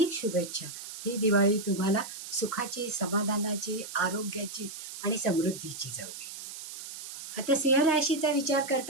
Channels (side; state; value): right; noise; hiss, 10 dB below the sound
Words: शुभेच्छा. ही दिवाळी तुम्हाला सुखाची, समाधानाची, आरोग्याची आणि समृद्धीची जाऊ दे. आता सिंह राशीचा विचार